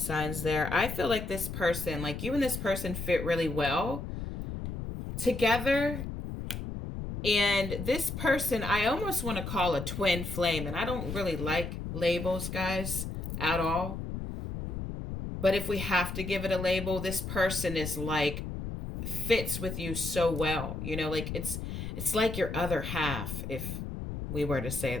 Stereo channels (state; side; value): noise; left; rumble, 6 dB below the sound